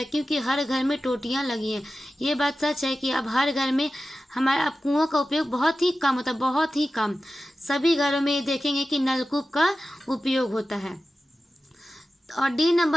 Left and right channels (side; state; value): both; normal; correlation 0.94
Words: क्योंकि हर घर में टोटियाँ लगी हैं। ये बात सच है कि अब हर घर में हमारे अब कुओं का उपयोग बहुत ही कम होता है, बहुत ही कम। सभी घरों में देखेंगे कि नलकूप का उपयोग होता है। और डी